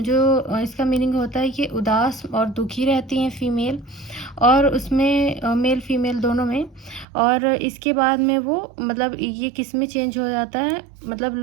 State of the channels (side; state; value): left; drops out; at 7.1 s